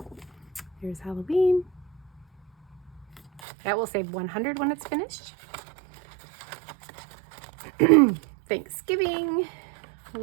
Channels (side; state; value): left; drops out; at 3.4 s